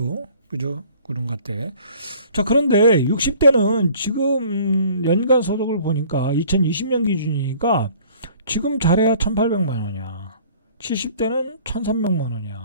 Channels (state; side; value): inverted; both; correlation -0.52